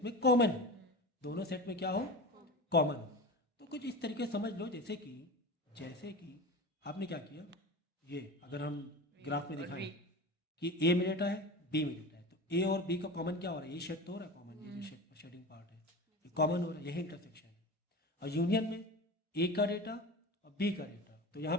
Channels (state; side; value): normal; both; correlation 0.30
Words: कॉमन है, दोनों सेट में क्या हो? कॉमन हो। तो कुछ इस तरीके से समझ लो, जैसे कि आपने क्या किया, ये अगर हम ग्राफ में दिखाएं कि ए में डेटा है, बी में डेटा है, तो ए और बी का कॉमन क्या हो रहा है? ये शेड तो हो रहा है कॉमन, ये जो शेडिंग पार्ट है ये कॉमन हो रहा है, यही इंटरसेक्शन है। और यूनियन में ए का डेटा और बी का डेटा, तो यहाँ